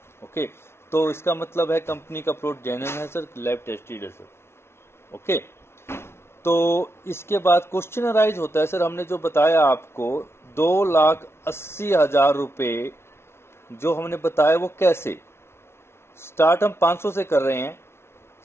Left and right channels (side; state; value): right; late; 0.12 ms